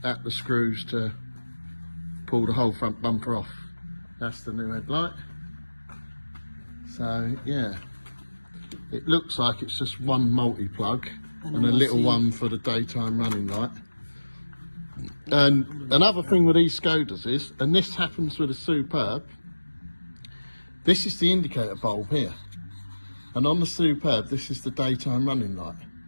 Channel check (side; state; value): both; inverted; correlation -1.00